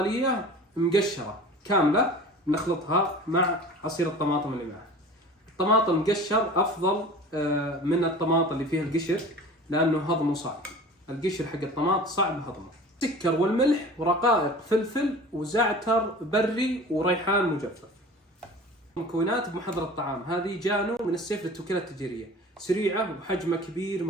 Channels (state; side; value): normal; both; correlation 0.40